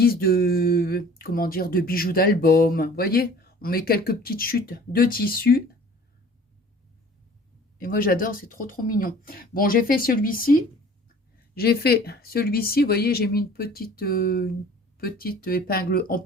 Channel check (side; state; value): both; normal; correlation 0.48